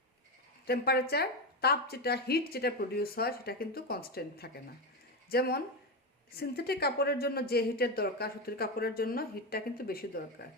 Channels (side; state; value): both; normal; correlation 0.14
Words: টেম্পারেচার, তাপ যেটা, হিট যেটা প্রডিউস হয় সেটা কিন্তু কনস্ট্যান্ট থাকে না। যেমন সিনথেটিক কাপড়ের জন্য যে হিটের দরকার, সুতির কাপড়ের জন্য হিটটা কিন্তু বেশি দরকার।